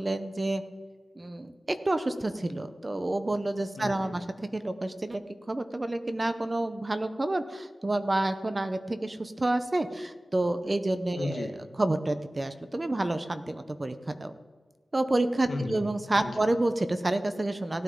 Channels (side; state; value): both; normal; correlation 0.98